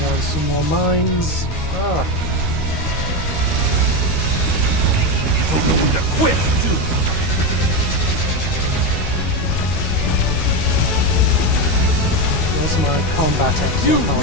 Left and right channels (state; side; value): late; right; 13 ms